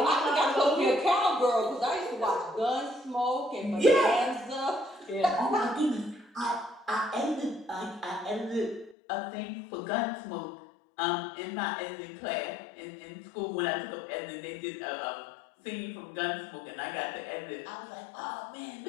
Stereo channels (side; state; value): right; drops out; at 9.0 s